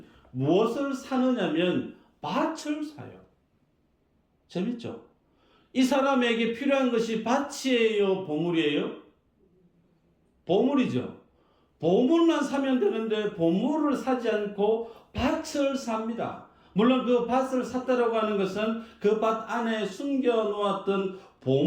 무엇을 사느냐면 밭을 사요. 재밌죠? 이 사람에게 필요한 것이 밭이에요, 보물이에요? 보물이죠. 보물만 사면 되는데 보물을 사지 않고 밭을 삽니다. 물론 그 밭을 샀다라고 하는 것은 그 밭 안에 숨겨놓았던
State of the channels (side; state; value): both; identical; correlation 1.00